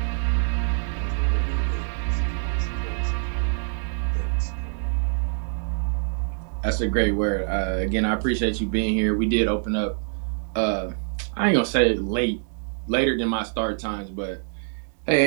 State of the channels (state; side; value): silent; left; digital silence